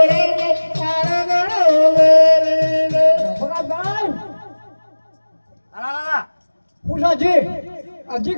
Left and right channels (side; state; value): both; inverted; correlation -1.00